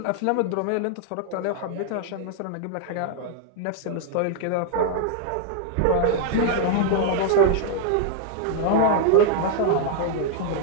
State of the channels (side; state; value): both; different; correlation 0.00